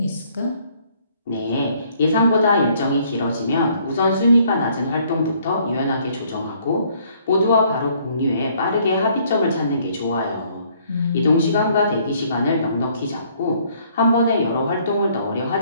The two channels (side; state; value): both; inverted; correlation -0.63